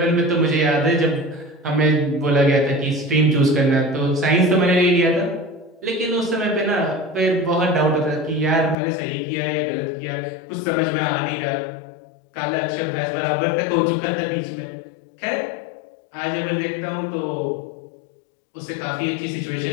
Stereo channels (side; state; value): right; drops out; at 8.8 s